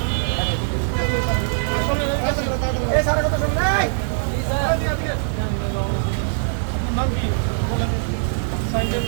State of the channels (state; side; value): silent; left; digital silence